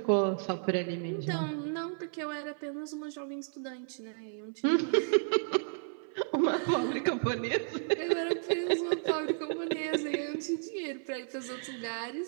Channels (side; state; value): left; silent; 56 dB below the other